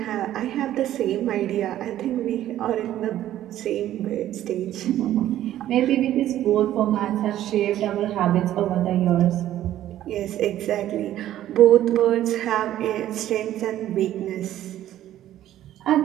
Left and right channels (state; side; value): quieter; left; 12.7 dB